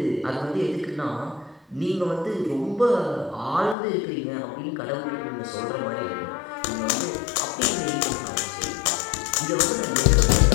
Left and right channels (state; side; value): drops out; right; at 3.8 s